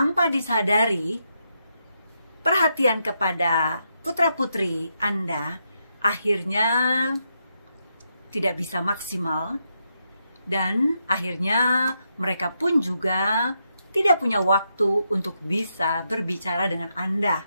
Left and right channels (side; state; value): both; inverted; correlation -0.82